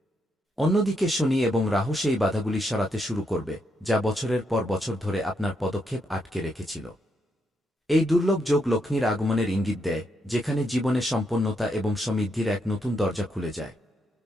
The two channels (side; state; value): both; normal; correlation 0.78